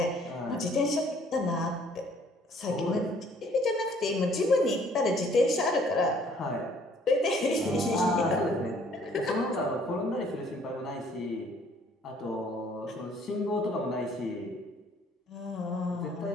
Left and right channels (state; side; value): normal; both; correlation 0.60